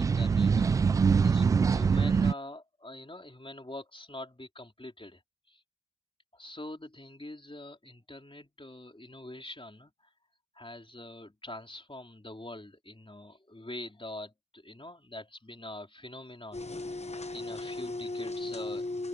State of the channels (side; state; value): left; quieter; 4.4 dB